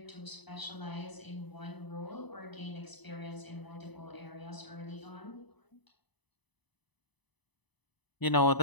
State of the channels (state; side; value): late; right; 0.99 ms